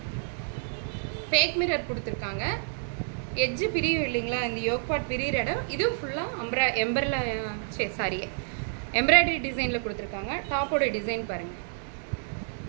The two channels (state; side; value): silent; left; digital silence